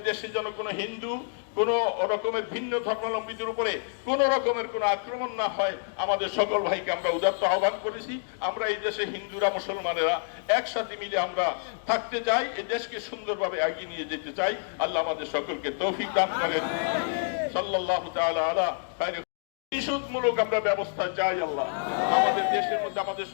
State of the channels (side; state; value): right; silent; digital silence